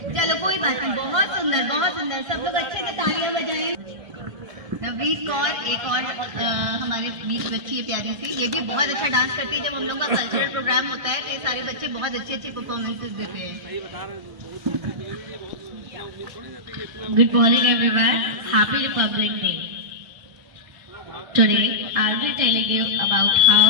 कोई बात नहीं, बहुत सुंदर बहुत सुंदर, सब लोग अच्छे से तालियां बजाएं। नवनीत कौर एक और हमारे बीच बच्ची है प्यारी सी, ये भी बहुत अच्छा डांस करती है। जब हम लोग का कल्चरल प्रोग्राम होता है तो ये सारे बच्चे बहुत अच्छी अच्छी परफॉर्मेंसेस देते हैं। Good morning everyone, Happy Republic Day. Today I'll be telling you about how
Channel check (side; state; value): left; late; 1.5 ms